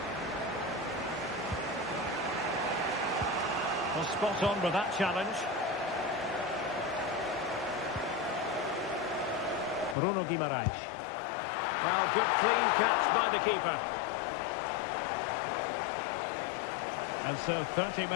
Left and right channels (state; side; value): drops out; right; at 10.0 s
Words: Well, spot on with that challenge. Bruno Guimaraes. Well, good clean catch by the keeper. And so 30